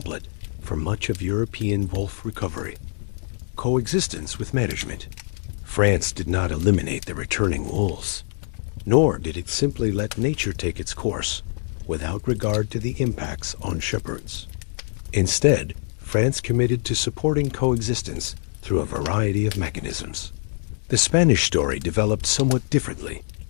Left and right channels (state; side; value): silent; right; 62 dB below the other